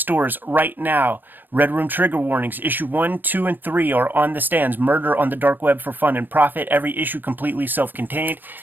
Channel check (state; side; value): late; left; 0.092 ms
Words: right now. Red Room Trigger Warnings, issue 1, 2, and 3 are on the stands. Murder on the Dark Web for fun and profit. Every issue completely self-contained.